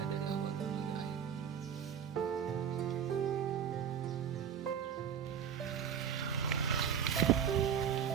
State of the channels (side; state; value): left; quieter; 8.1 dB